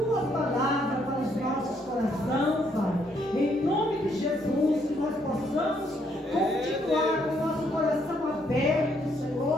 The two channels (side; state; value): both; normal; correlation 0.71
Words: palavra para os nossos corações, Pai. Em nome de Jesus, que nós possamos continuar com o nosso coração aberto,